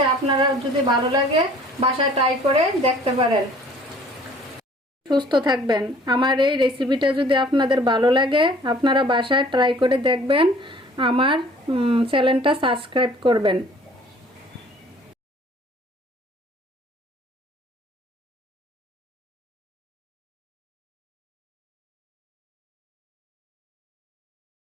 আপনারা যদি ভালো লাগে বাসায় ট্রাই করে দেখতে পারেন। সুস্থ থাকবেন। আমার এই রেসিপিটা যদি আপনাদের ভালো লাগে আপনারা বাসায় ট্রাই করে দেখবেন। আমার চ্যানেলটা সাবস্ক্রাইব করবেন।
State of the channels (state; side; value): normal; both; correlation 0.53